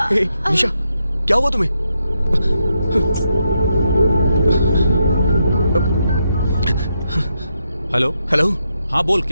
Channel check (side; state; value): both; inverted; correlation -0.82